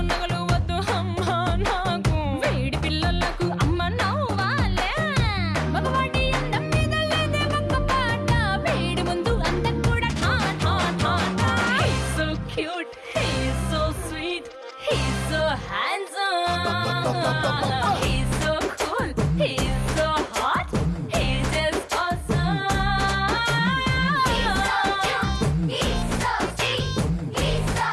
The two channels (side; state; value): both; identical; correlation 1.00